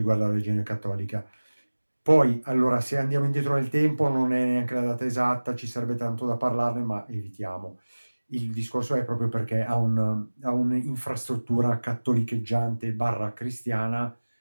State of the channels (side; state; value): both; inverted; correlation -1.00